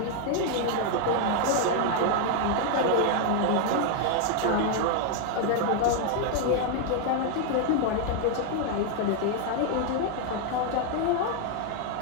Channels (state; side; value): different; both; correlation 0.00